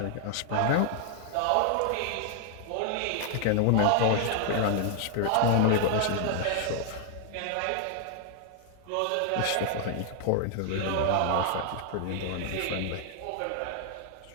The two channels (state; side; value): different; both; correlation 0.00